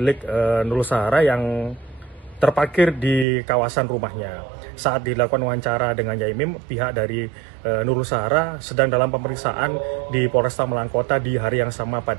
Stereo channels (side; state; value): left; drops out; at 3.2 s